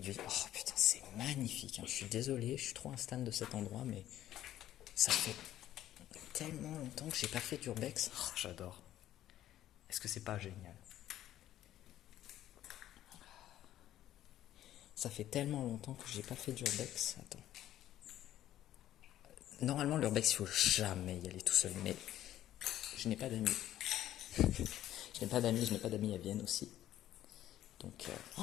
Oh putain, c'est magnifique, hein. Je suis désolé, je suis trop un stan de cet endroit, mais ça fait tellement longtemps que j'ai pas fait d'urbex. Oh, j'adore. Est-ce que c'est pas génial? Ça fait tellement longtemps que j'ai pas fait d'urbex. Attends. Normalement, l'urbex, il faut jamais y aller tout seul, mais je n'ai pas d'amis. Je n'ai pas d'amis à Vienne aussi. Donc,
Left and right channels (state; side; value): quieter; right; 12.8 dB